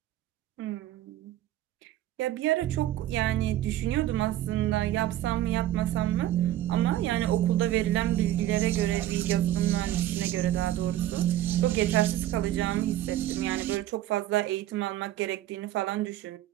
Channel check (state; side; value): quieter; left; 13.4 dB